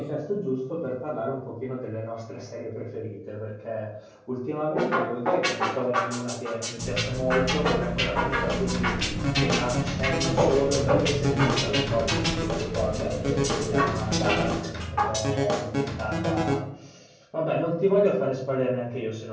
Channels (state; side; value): identical; both; correlation 1.00